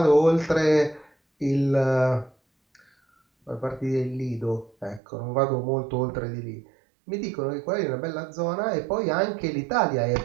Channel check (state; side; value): drops out; left; at 5.0 s